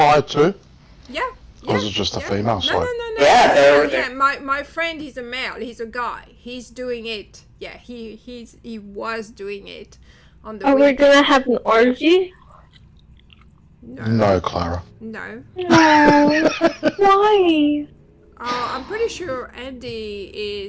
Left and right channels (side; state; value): both; identical; correlation 1.00